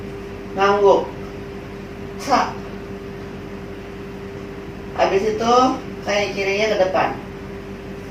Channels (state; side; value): identical; both; correlation 1.00